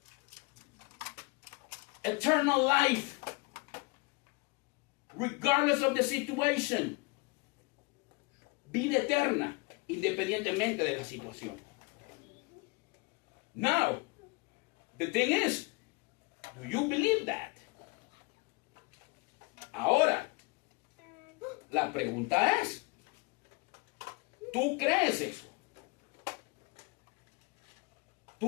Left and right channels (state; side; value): quieter; right; 26.8 dB